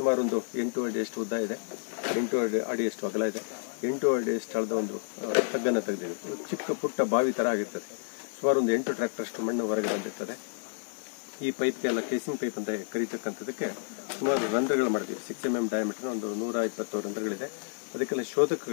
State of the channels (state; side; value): silent; right; 55 dB below the other